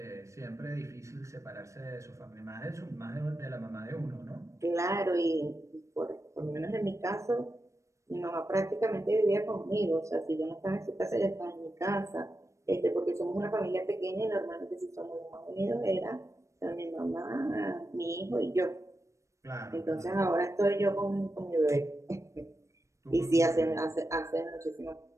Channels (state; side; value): late; left; 0.15 ms